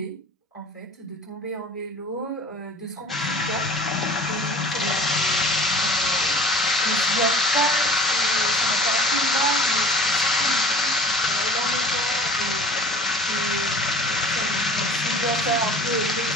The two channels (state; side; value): normal; both; correlation 0.44